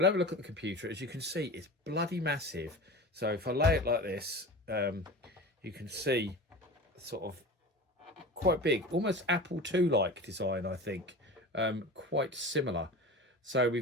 have a look at the computer. As you can see, it's bloody massive. So if I lay it like this, you can see sort of quite big, almost Apple II like design, I think. Quite similar. So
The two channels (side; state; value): both; normal; correlation 0.33